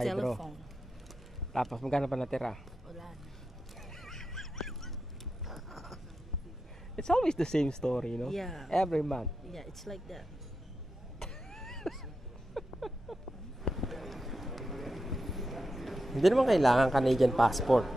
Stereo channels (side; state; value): both; normal; correlation 0.88